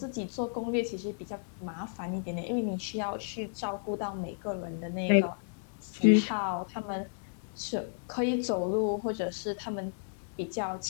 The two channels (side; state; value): right; silent; digital silence